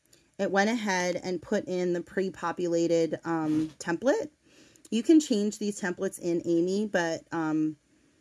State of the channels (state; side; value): identical; both; correlation 1.00